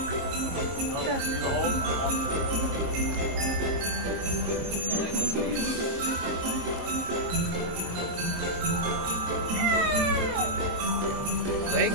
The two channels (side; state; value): left; late; 22 ms